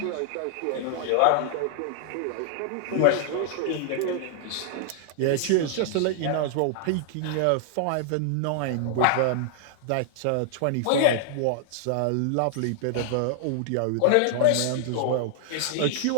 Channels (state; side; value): different; both; correlation -0.01